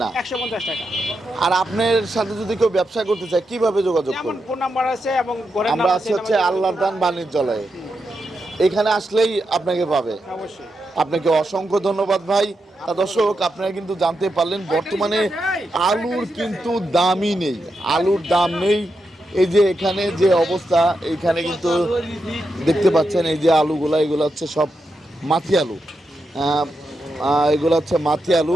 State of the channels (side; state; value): both; normal; correlation 0.86